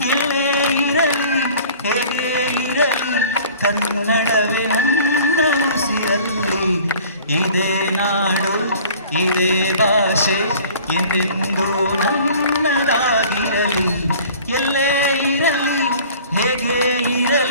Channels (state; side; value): inverted; both; correlation -0.47